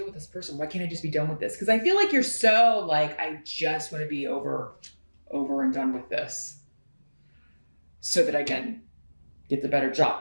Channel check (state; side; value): inverted; both; correlation -1.00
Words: with this person? Why can't I just be done with this? Because I feel like you're so I just want to be over and done with this so that I can get the better